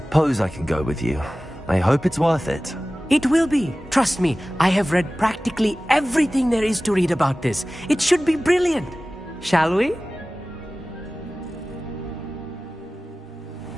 I can go with you. I hope it's worth it. It will be. Trust me, I have read practically everything there is to read about this. It should be brilliant. Shall we?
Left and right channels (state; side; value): normal; both; correlation 0.97